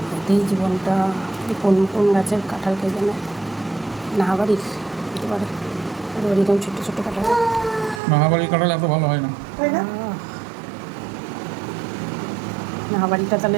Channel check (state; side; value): drops out; left; at 8.0 s